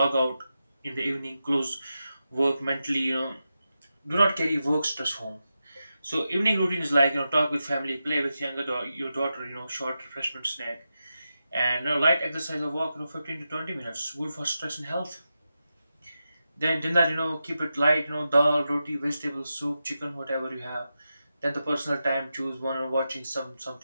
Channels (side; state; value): both; inverted; correlation -0.90